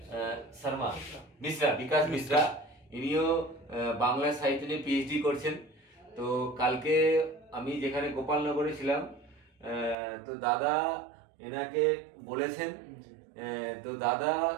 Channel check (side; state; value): left; drops out; at 10.0 s